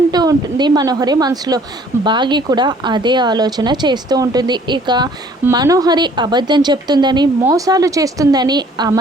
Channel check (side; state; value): both; normal; correlation 0.57